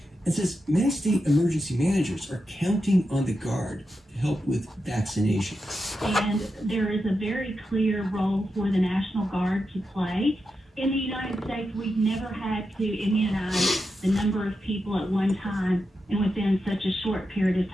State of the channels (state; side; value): normal; both; correlation 0.88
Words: and says many state emergency managers are counting on the Guard to help with vaccinations. And there is a very clear role for the National Guard to play. In the United States, we've never had to immunize the number of people at one time and within such a short period of